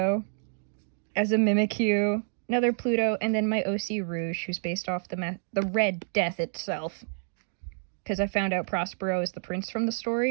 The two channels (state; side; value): silent; left; digital silence